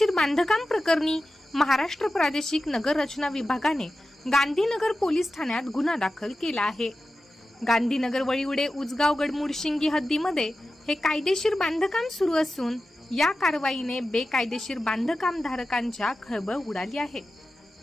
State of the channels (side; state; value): both; normal; correlation 0.93